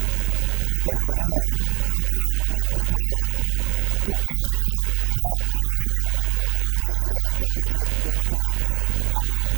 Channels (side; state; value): left; quieter; 31.1 dB